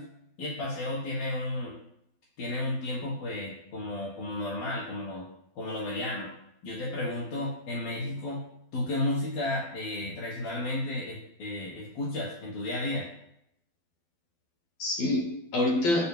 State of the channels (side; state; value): right; late; 12 ms